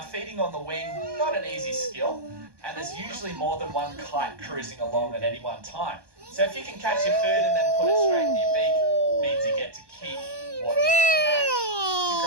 feeding on the wing, not an easy skill, and there's usually more than one kite cruising along at any one time. So if you can catch your food and then put it straight in your beak, it means you get to keep what you catch. It's a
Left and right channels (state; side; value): late; left; 1.2 ms